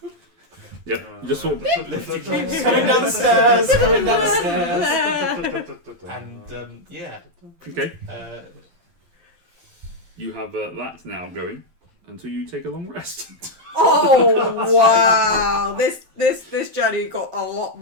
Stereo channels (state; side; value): late; left; 12 ms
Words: Yep. You just sort of Coming down the stairs. Coming down the stairs. And yeah, okay. uh, You have that now going until you take a long rest. Oh wow! This journey got a lot